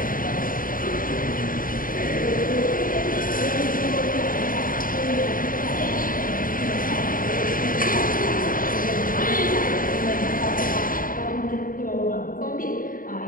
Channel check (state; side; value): late; right; 0.40 ms